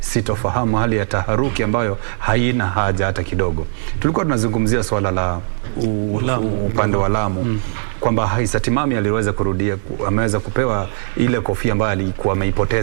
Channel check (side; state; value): left; silent; digital silence